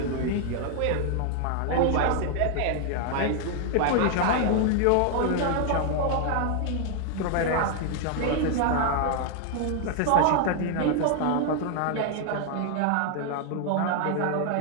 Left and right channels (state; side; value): different; both; correlation 0.00